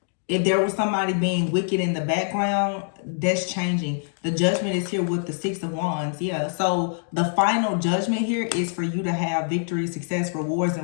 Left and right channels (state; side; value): silent; right; digital silence